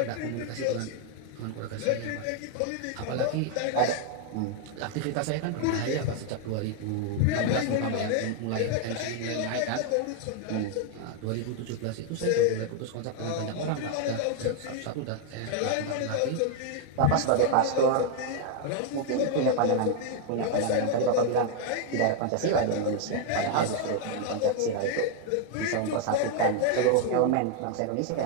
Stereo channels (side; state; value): both; different; correlation 0.00